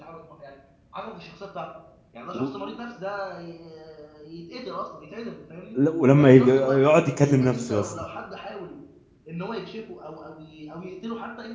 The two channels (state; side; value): identical; both; correlation 1.00